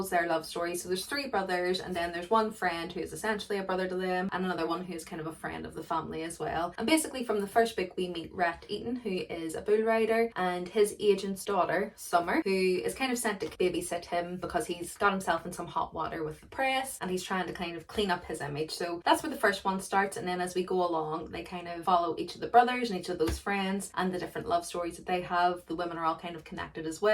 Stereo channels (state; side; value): identical; both; correlation 1.00